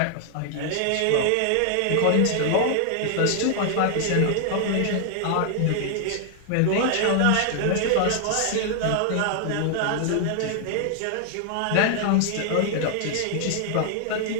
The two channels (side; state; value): both; different; correlation 0.00